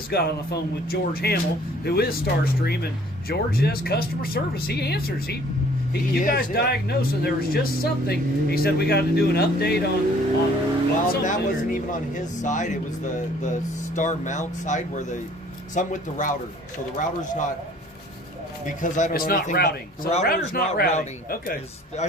got on the phone with George Hamill, who is Starstream, and George does customer service. He answers. You guys diagnosed, and there was just something. He said we got to do an update on Well, something that or- wasn't even on his side. It was the star mount side where some with the router. So the router's not, because I don't It's know not anything about- routing. the So the router's not routing. Okay. Is- I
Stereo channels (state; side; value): normal; both; correlation 0.56